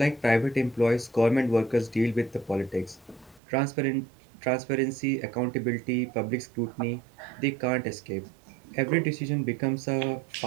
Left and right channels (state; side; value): drops out; left; at 3.4 s